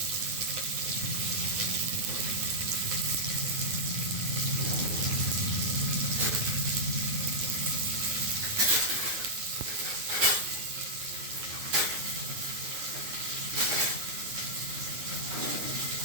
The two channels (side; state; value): left; late; 9.6 ms